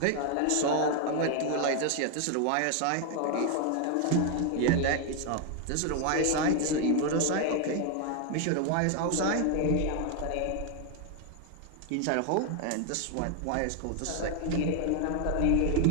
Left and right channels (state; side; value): different; both; correlation 0.01